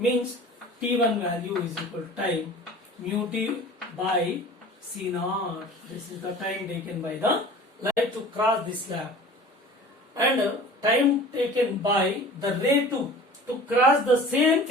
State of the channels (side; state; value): both; normal; correlation 0.42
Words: t1 value is equal to time mu t by c naught. This is the time taken by the light to cross this slab, and time taken by the ray 2 to cross the same